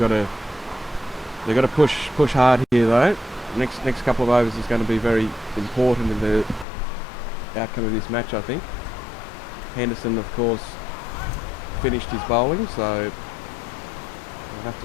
to push hard here though. Next couple of overs is going to be very important in the outcome of this match, I think. Henderson, of course, finished his bowling, so we'll have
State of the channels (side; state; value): right; drops out; at 6.7 s